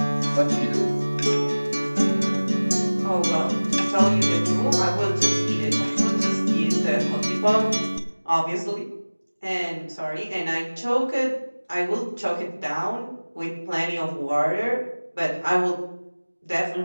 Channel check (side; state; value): both; inverted; correlation -1.00